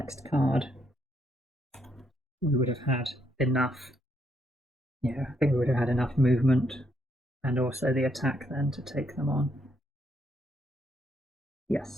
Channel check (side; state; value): both; normal; correlation 0.75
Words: card, we would have had enough. Yeah, I think we would have had enough movement and also the attack then to take them on.